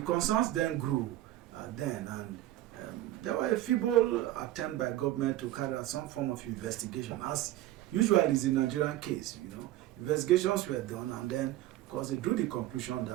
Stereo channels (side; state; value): left; quieter; 14.8 dB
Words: concerns then grew and there were a feeble attempt by government to carry out some form of investigation, as usually is the Nigerian case. Investigations were done, and then, of course, they drew the conclusion